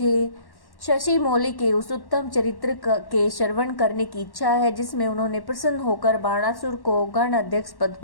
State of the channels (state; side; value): late; right; 1.1 ms